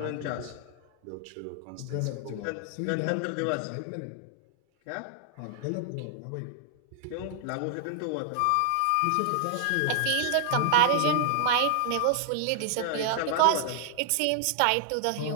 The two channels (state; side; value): different; both; correlation -0.01